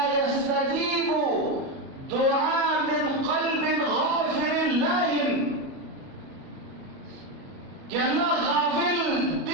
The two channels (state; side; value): late; left; 37 ms